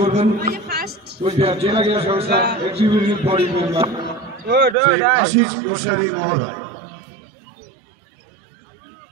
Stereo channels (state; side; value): drops out; left; at 4.8 s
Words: কুচবিহার জেলা ক্রীড়া সংস্থা executive body member Ashis Goswami মহোদয়।